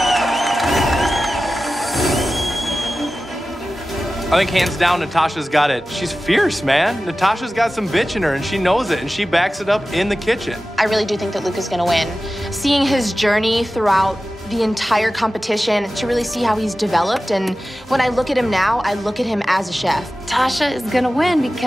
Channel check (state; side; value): normal; both; correlation 0.95